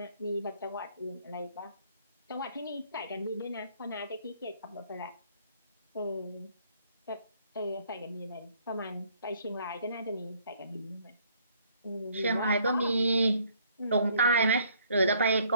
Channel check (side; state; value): both; inverted; correlation -0.63